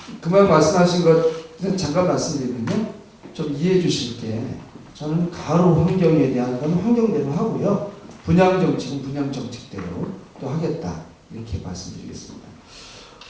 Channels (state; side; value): identical; both; correlation 1.00